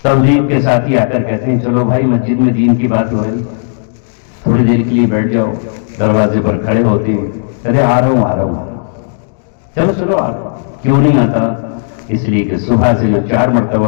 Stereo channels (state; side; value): silent; right; digital silence